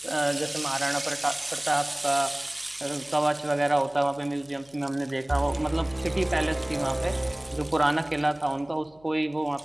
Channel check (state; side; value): noise; left; hum, 29 dB below the sound